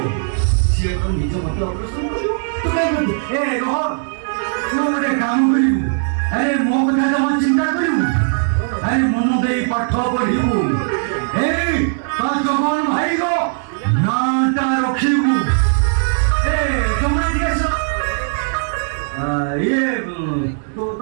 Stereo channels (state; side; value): silent; left; digital silence